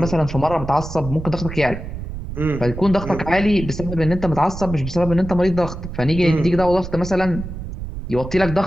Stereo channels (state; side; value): noise; right; rumble, 9 dB below the sound